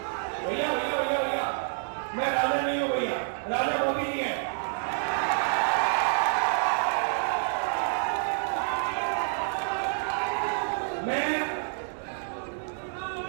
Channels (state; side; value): silent; left; digital silence